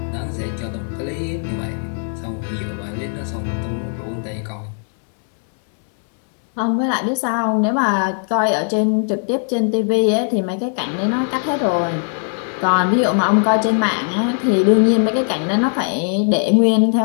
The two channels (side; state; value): right; silent; 60 dB below the other